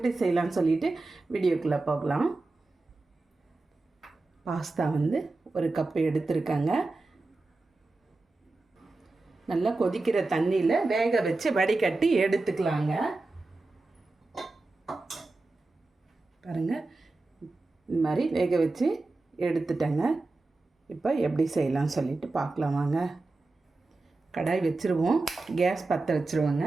செய்யலான்னு சொல்லிட்டு வீடியோக்குள்ளே போகலாம். பாஸ்தா ஒரு கப்பு எடுத்துருக்கேங்க. நல்லா கொதிக்கிற தண்ணியில் வேக வச்சு வடிகட்டி எடுத்துக்கலாங்க. பாருங்கள், இந்த மாதிரி வேக வச்சு எடுத்துட்டேங்க. இப்போ எப்படி செய்யலாம்னு சொல்லிட்டு பார்க்கலாம் வாங்க. கடாய் வச்சுருவோம். கேஸ் பற்ற வச்சுருவோங்க.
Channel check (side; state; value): left; quieter; 3.3 dB